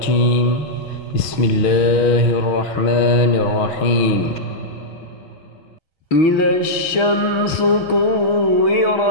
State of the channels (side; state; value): right; late; 6.3 ms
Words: بسم الله الرحمن الرحيم. إذا الشمس